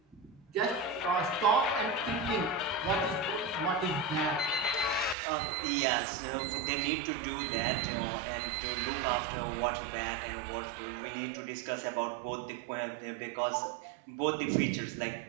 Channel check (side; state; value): left; drops out; at 5.2 s